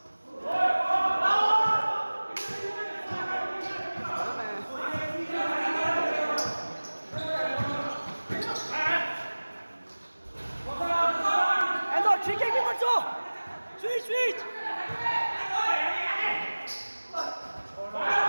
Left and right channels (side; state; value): both; inverted; correlation -1.00